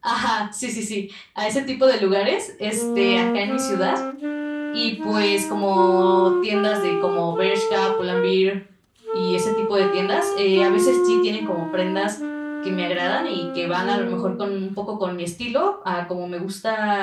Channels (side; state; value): both; identical; correlation 1.00